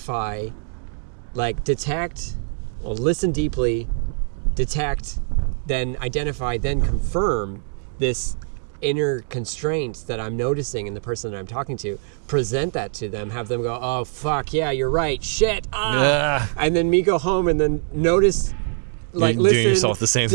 detect, listen deeply, detect, then identify, then confirm this inner constraints that I'm noticing in the person that I'm talking to, present that to them, have them go, oh, fuck, yeah, you're right, shit, and then me go home and then notice, listen, the same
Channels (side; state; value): left; silent; digital silence